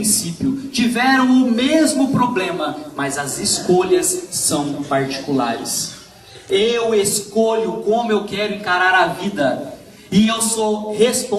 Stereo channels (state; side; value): identical; both; correlation 1.00